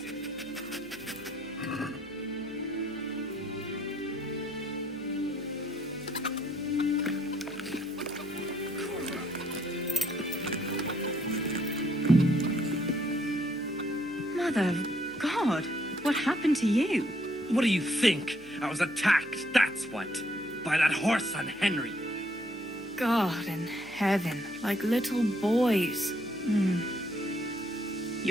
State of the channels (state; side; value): noise; left; hum, 26 dB below the sound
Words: Mother of God, what happened to you? What do you think? I was attacked, that's what. By that horse on Henry. God in heaven, like little boys.